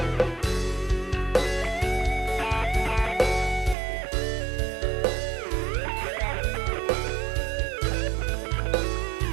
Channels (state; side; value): drops out; left; at 3.8 s